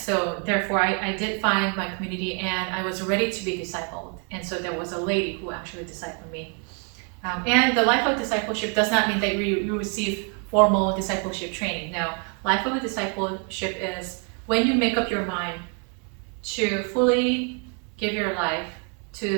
therefore I did find my community, and I was ready to be discipled. And so there was a lady who actually discipled me. And the life of discipleship does not mean that you receive formal discipleship training. No, life of a discipleship is when you make up your mind to fully give your life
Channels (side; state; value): left; quieter; 39.0 dB